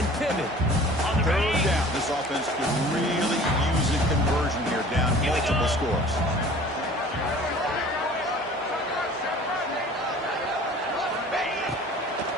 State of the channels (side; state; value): both; normal; correlation 0.46